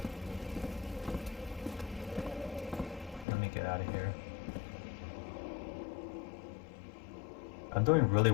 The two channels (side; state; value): right; drops out; at 3.2 s